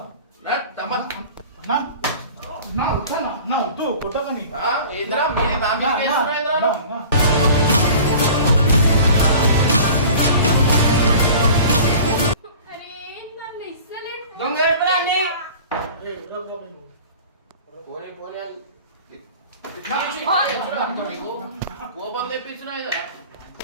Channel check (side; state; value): both; inverted; correlation -0.42